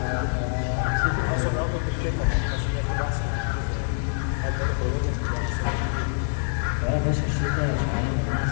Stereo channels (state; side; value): silent; right; digital silence